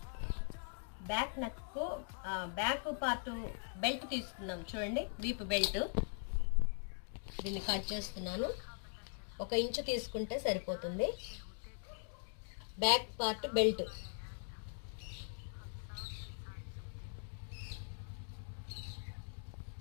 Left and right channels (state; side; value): silent; right; digital silence